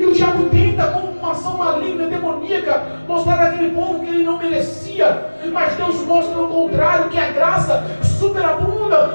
o diabo tenta, com uma ação maligna, demoníaca, mostrar àquele povo que ele não merecia. Mas Deus mostra o contrário, que a graça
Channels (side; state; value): both; inverted; correlation -1.00